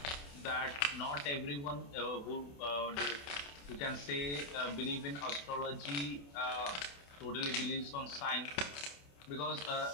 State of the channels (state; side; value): late; right; 28 ms